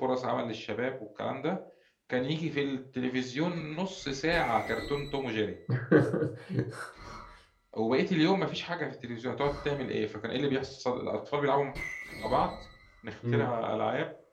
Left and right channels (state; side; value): identical; both; correlation 1.00